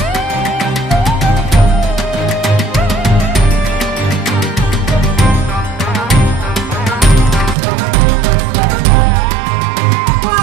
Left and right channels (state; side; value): drops out; left; at 7.6 s